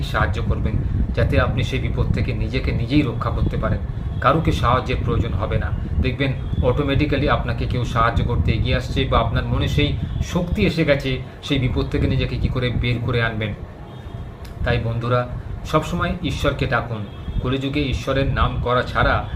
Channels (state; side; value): identical; both; correlation 1.00